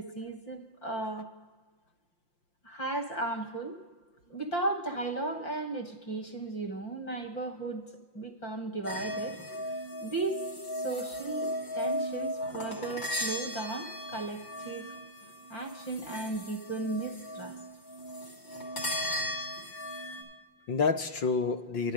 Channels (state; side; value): late; right; 5.8 ms